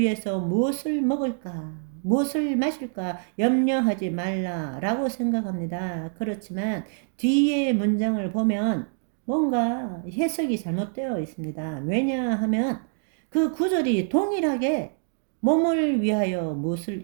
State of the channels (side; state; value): left; silent; digital silence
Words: 무엇을 먹을까, 무엇을 마실까 염려하지 말라라고 생각합니다. 그렇지만 뒤에 문장을 보면 뭔가 해석이 잘못되어 있습니다. 왜냐하면 그 구절이 동일하게 몸을 위하여